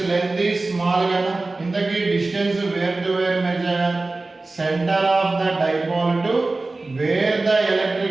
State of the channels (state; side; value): quieter; left; 3.3 dB